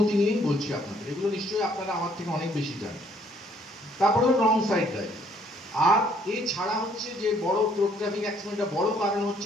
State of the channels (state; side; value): normal; both; correlation 0.64